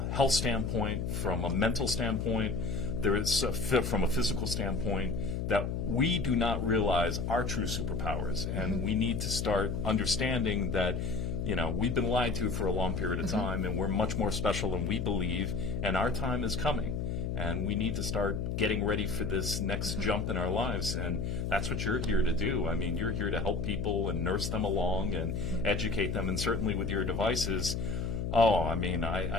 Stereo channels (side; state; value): left; noise; hum, 2 dB below the sound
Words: health standpoint, from a mental standpoint, there is from a physical standpoint, that we do not realize our true superpowers, and we need to start understanding that we've been lied to for a long period of time, and we're much more special than we believe, and our time is coming, and we need to start getting ready for this next jump in our lives, and that's what you're here to do. I mean, you're here to help people and nurse them along and educate them, and certainly with your devices,